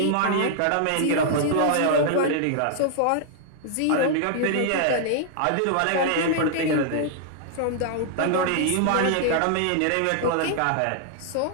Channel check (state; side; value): different; both; correlation -0.01